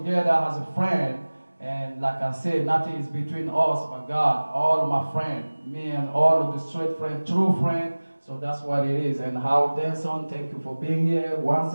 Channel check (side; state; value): both; inverted; correlation -1.00